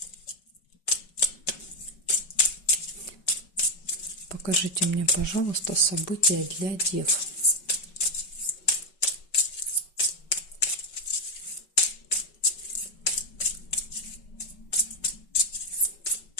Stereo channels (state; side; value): late; right; 5.3 ms